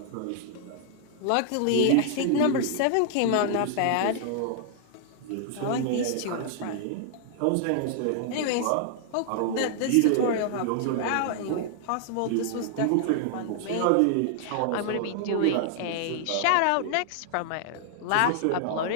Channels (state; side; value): different; both; correlation -0.01